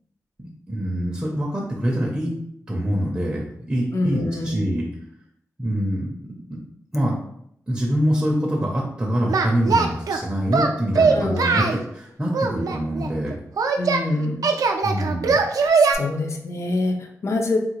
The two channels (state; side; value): normal; both; correlation 0.78